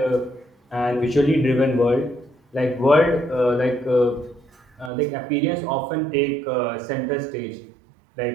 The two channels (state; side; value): drops out; left; at 4.9 s